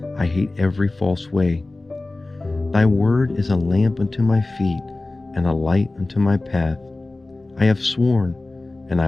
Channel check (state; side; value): quieter; right; 3.0 dB